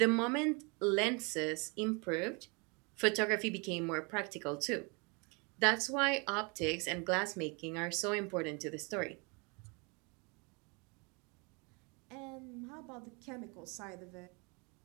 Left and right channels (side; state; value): left; quieter; 31.3 dB